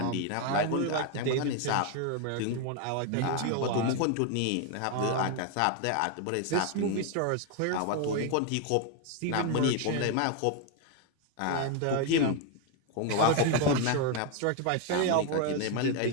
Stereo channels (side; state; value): both; different; correlation 0.01